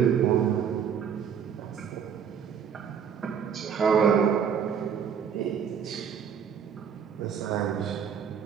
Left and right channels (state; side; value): quieter; left; 7.5 dB